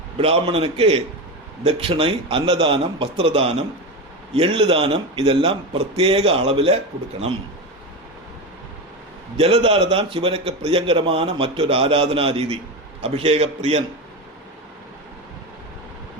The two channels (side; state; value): both; normal; correlation 0.19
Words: பிராமணனுக்கு தட்சிணை, அன்னதானம், வஸ்திரதானம், எள்ளு தானம் இதெல்லாம் பிரத்யேக அளவில் கொடுக்கணும். ஜலதாரதான் சிவனுக்கு பிரியங்கரமான மற்றொரு ஆராதனா ரீதி. அபிஷேக பிரியன்.